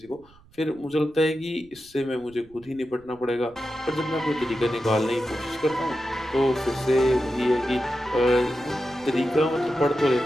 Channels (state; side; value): noise; right; rumble, 27 dB below the sound